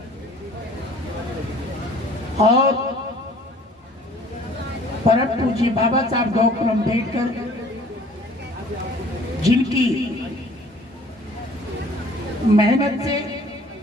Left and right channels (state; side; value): normal; both; correlation 0.52